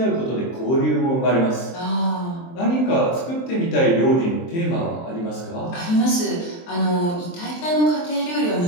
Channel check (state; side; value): late; right; 23 ms